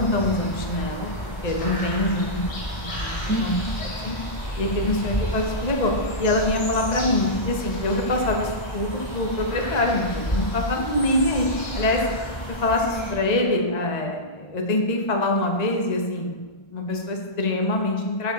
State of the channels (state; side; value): late; right; 1.3 ms